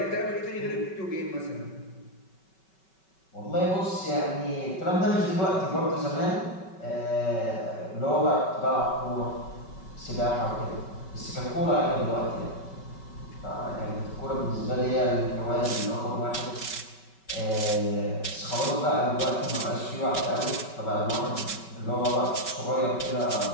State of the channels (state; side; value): late; right; 5.3 ms